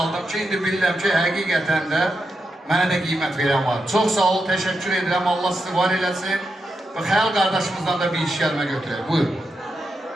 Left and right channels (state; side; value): normal; both; correlation 0.86